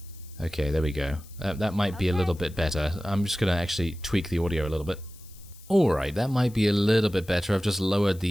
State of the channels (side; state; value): left; noise; hiss, 23 dB below the sound